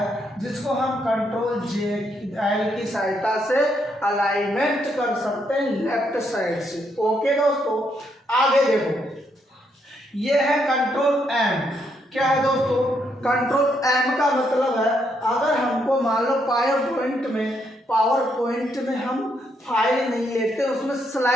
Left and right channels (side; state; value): both; normal; correlation 0.76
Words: जिसको हम कंट्रोल जे एल की सहायता से अलाइनमेंट कर सकते हैं लेफ्ट साइड से। ओके दोस्तों, आगे देखो, ये है कंट्रोल एम। क्या है दोस्तों, कंट्रोल एम का मतलब है, अगर हमको मान लो पावर पॉइंट में हम फाइल नहीं लेते, उसमें